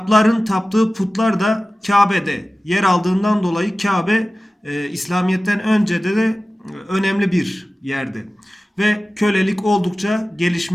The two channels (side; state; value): both; normal; correlation 0.96